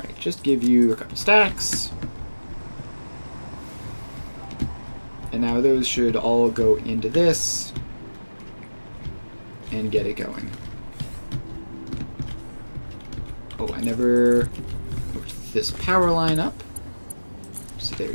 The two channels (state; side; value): inverted; both; correlation -1.00